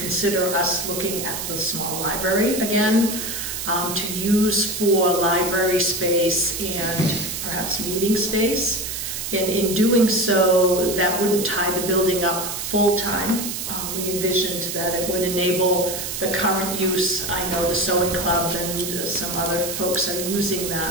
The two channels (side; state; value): right; noise; hiss, 5 dB below the sound